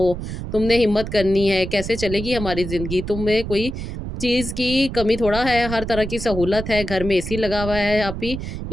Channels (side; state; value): right; noise; rumble, 7 dB below the sound